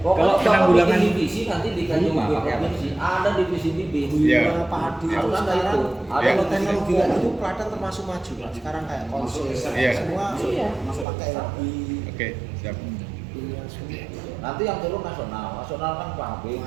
Kalau Pokoknya penanggulangan- bikin divisi nanti di KJUB Rumah, pakai apa? provinsi ada divisi bibit. Iya. Gula, padi, Harus terus ada sekarang itu. Ada Iya. kalau teknologi kayak gitu Klaten termasuk maju lah. Sekarang kayak konsul Iya. semua pakai lebih Oke, siap. semua. Nanti yang turun nasional kan pabrik,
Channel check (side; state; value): left; drops out; at 11.1 s